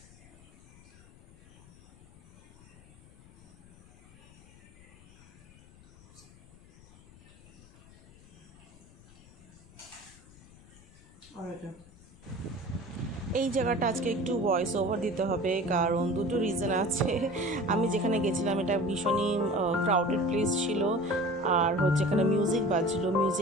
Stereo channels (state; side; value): noise; left; rumble, 23 dB below the sound